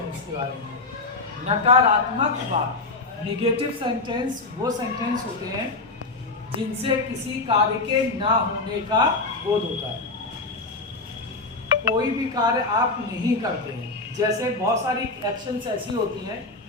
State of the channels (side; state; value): right; quieter; 3.4 dB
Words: के बारे में। नकारात्मक वाक्य, नेगेटिव सेंटेंस वो सेंटेंस होते हैं जिनसे किसी कार्य के ना होने का बोध होता है। कोई भी कार्य आप नहीं करते हैं। जैसे बहुत सारी एक्शंस ऐसी होती हैं